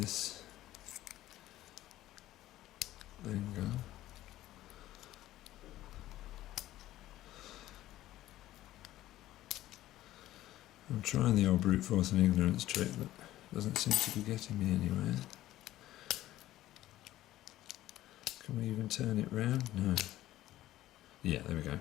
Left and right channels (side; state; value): right; quieter; 14.8 dB